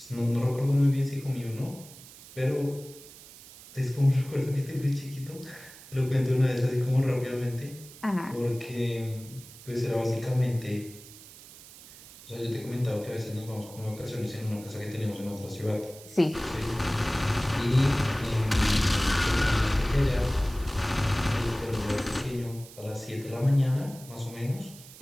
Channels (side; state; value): right; noise; hiss, 19 dB below the sound